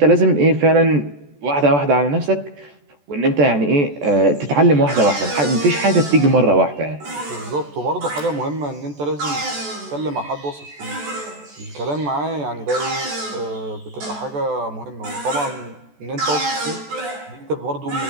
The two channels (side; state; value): left; late; 14 ms